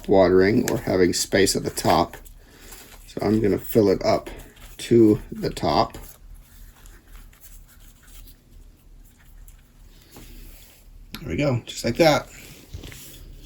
watering or having space at the top. So I'm going to fill it up to the top. There we go, just like that.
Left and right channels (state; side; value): identical; both; correlation 1.00